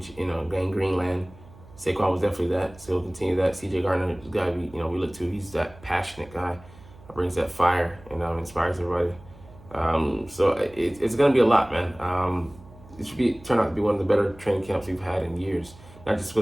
Greenland. Saquon was definitely that, so he'll continue that. CJ Gardner, the guy we look to. He's that passionate guy, brings that fire and inspires everybody. So it's gonna be a lot, man. It should turn out to be one of the better training camps we've had in years. Not just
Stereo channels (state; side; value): noise; right; hum, 22 dB below the sound